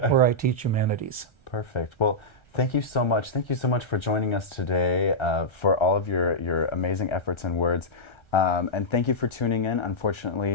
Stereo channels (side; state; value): right; late; 1.3 ms